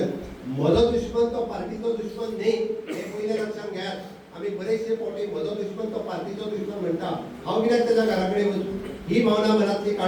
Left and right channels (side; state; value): both; identical; correlation 1.00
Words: म्हजो दुश्मन तो पार्टीचो दुश्मन न्ही हे पयले लक्षात घेयात आमी बरेचशे फावटी म्हजो दुश्मन तो पार्टीचो दुश्मन म्हणटा हांव कित्याक तेज्या घरा कडेन वचूं ही भावना मनांतली